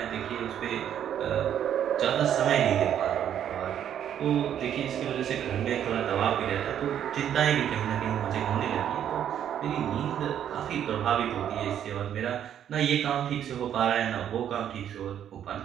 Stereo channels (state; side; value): quieter; left; 9.9 dB